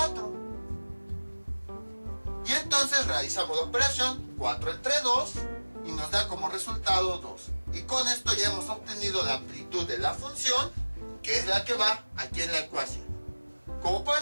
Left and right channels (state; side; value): inverted; both; correlation -1.00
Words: Y entonces realizamos la operación 4 entre 2 y nos da como resultado 2. Y con esto ya hemos obtenido la amplitud de la función, que es la que va aquí en la ecuación. Como